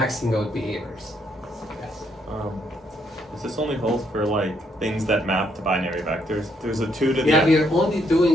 out behaviors. Yes. Does this only hold for like things that map to binary vectors? There's a 2 to the Yeah, we are only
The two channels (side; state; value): both; normal; correlation 0.73